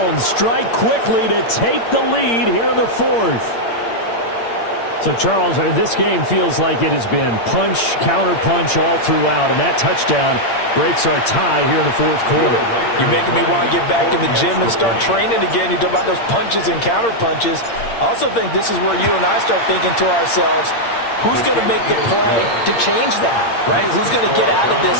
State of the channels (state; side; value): late; right; 8.7 ms